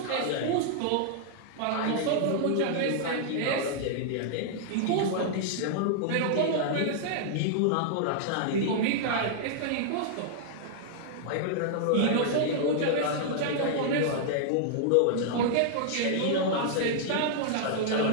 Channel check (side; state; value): both; different; correlation -0.01